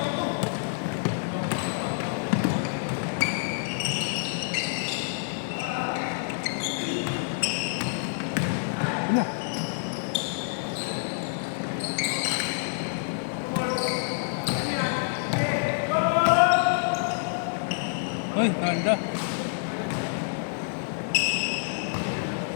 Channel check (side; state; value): right; silent; digital silence